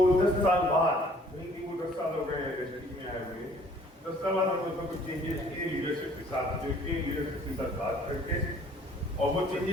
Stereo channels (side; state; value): both; normal; correlation 0.56